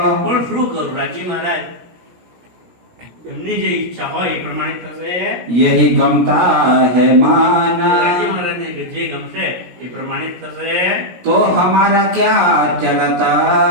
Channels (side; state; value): left; late; 17 ms